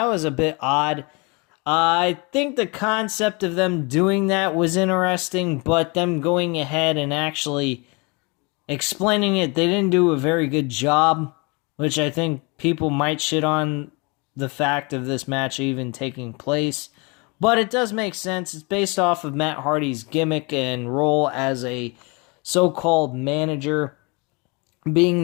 was a bit odd. I think the concept of them doing that was interesting, but them going ahead and actually explaining it, they didn't do a very good job, which I think people might shit on the fact of this match even taking place. But it does make sense. It's based off of Matt Hardy's gimmick and role as a so-called manager, being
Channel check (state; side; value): quieter; right; 29.4 dB